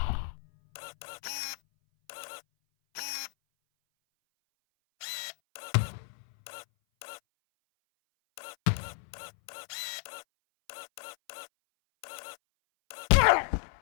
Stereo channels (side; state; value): right; silent; 56 dB below the other